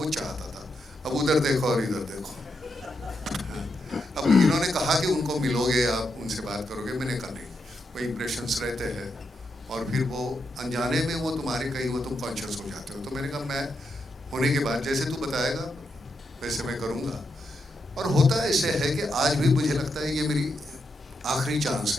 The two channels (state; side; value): normal; both; correlation 0.83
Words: चाहता था। अब उधर देखो और इधर देखो। अब इन्होंने कहा कि उनको मिलोगे आप, उनसे बात करोगे, मैंने कहा नहीं, वो इम्प्रेशंस रहते हैं और फिर वो अनजाने में वो तुम्हारे कहीं वो तुम कॉन्शियस हो जाते हो। तो मैंने कहा मैं होने के बाद जैसे तू बताएगा वैसे मैं करूँगा। और होता ऐसे है कि आज भी मुझे लगता है ये मेरी आखिरी चांस